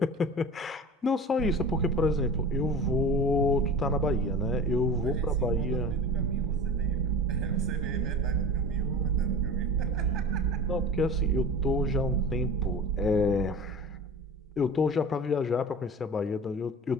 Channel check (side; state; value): both; normal; correlation 0.34